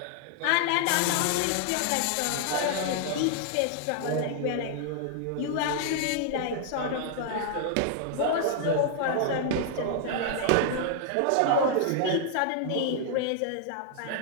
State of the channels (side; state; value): both; different; correlation -0.01